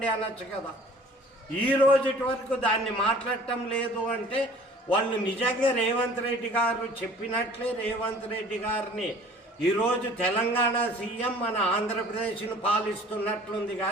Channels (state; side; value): normal; both; correlation 0.49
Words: అనొచ్చు కదా. ఈ రోజుటి వరకు దాన్ని మాట్లాడటం లేదు అంటే వాళ్ళు నిజంగా రేవంత్ రెడ్డి గారు చెప్పినట్లే రేవంత్ రెడ్డి గారిని ఈరోజు తెలంగాణ సీఎం మన ఆంధ్రప్రదేశ్ను పాలిస్తున్నట్లుంది